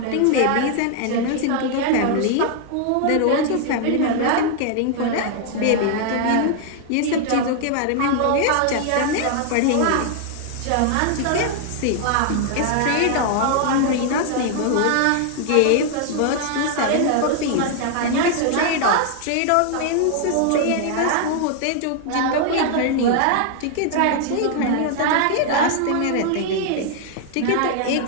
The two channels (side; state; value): both; different; correlation 0.00